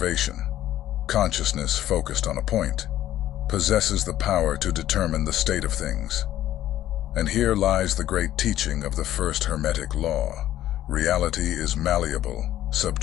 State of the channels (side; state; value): right; quieter; 13.0 dB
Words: consciousness focused on a point, possesses the power to determine the state of things. And here lies the great teaching of the first Hermetic Law. Reality is malleable,